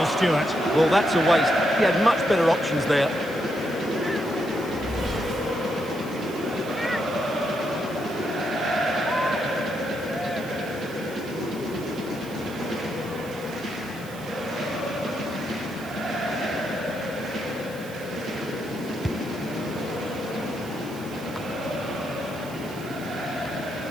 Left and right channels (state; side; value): noise; right; hiss, 18 dB below the sound